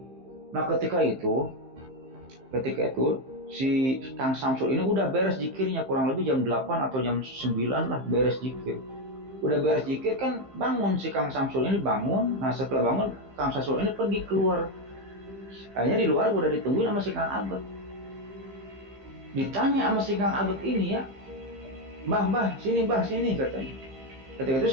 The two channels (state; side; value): late; left; 15 ms